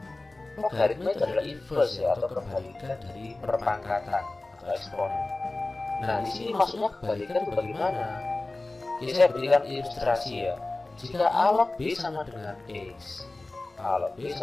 logaritma itu adalah inverse ya, atau kebalikan dari perpangkatan atau eksponen. Nah, di sini maksudnya kebalikan itu bagaimana? Jadi saya berikan ilustrasi ya. Jika A log B sama dengan X, A log B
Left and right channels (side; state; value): right; quieter; 3.0 dB